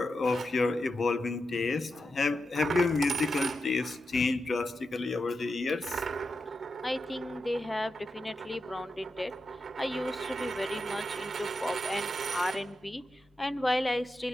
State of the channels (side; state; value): both; normal; correlation 0.88